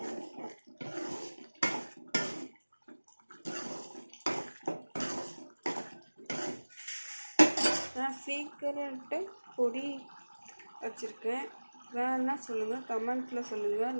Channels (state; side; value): inverted; both; correlation -1.00